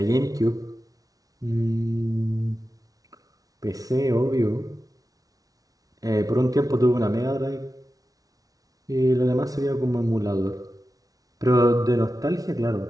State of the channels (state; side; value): late; left; 0.18 ms